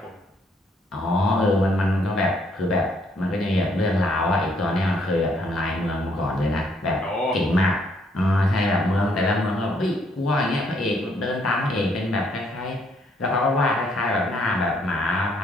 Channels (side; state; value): both; normal; correlation 0.69